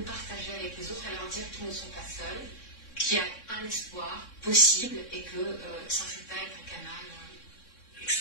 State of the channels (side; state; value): right; late; 3.6 ms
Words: partager avec les autres et leur dire qu'ils ne sont pas seuls, qu'il y a un espoir possible et que Saint-Rita est un canal